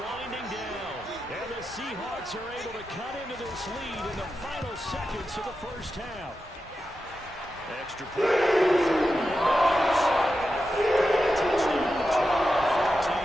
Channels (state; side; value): normal; both; correlation 0.90